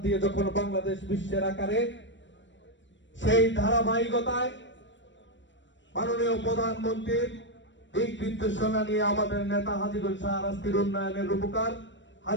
দিয়ে যখন বাংলাদেশ বিশ্বের আকারে, সেই ধারাবাহিকতায় মাননীয় প্রধানমন্ত্রীর দিক নির্দেশনা নিয়ে আমাদের নেতা হাজীগঞ্জ শাহরাস্তির উন্নয়নের রূপকার,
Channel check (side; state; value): right; late; 0.54 ms